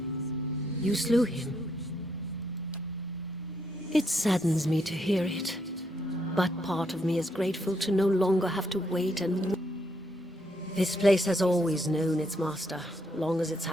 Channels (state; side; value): normal; both; correlation 0.76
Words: You slew him. It saddens me to hear it, but part of me is grateful to no longer have to wait and... This place has always known its master, long as it's